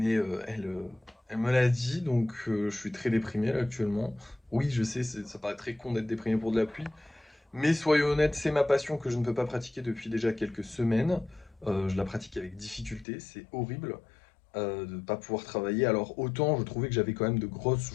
elle me l'a dit, donc je suis très déprimé là, actuellement. Oui, je sais, ça paraît très con d'être déprimé pour de la pluie, mais soyons honnêtes, c'est ma passion que je ne peux pas pratiquer depuis déjà quelques semaines. Je la pratique avec difficulté, c'est horrible de ne pas pouvoir travailler. Alors autant je trouvais que j'avais quand même de grosses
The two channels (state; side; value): drops out; right; at 13.1 s